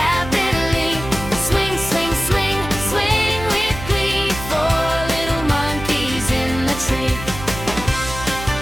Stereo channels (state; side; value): noise; right; hum, 10 dB below the sound